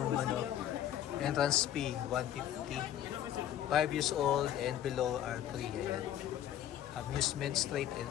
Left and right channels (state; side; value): quieter; right; 11.1 dB